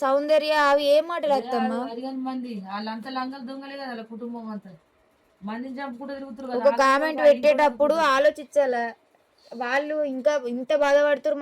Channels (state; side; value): identical; both; correlation 1.00